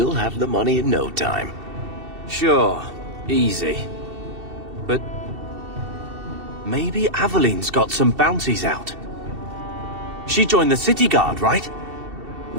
have the money in no time. Sure. Easy. But... maybe Aveline's got some bounties out. She joined the city guard, right?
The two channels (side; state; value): left; late; 2.7 ms